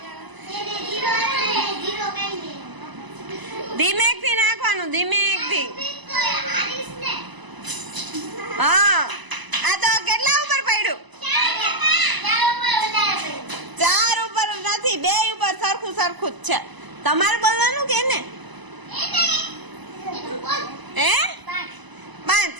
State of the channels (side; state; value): left; late; 1.0 ms